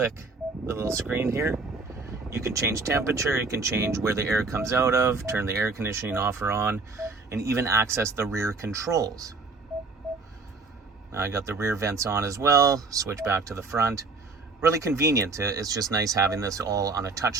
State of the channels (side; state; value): left; quieter; 4.0 dB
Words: the little screen here. You can change temperature, you can change where the air comes out of, turn the air conditioning off or on, and even access the rear controls. Now I got the rear vents on as well, switch back to the front. Really convenient. It's just nice having this all on a touch